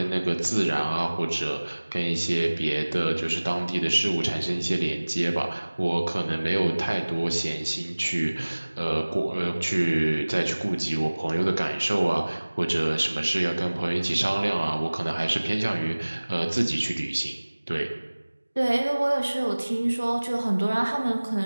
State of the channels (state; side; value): inverted; both; correlation -1.00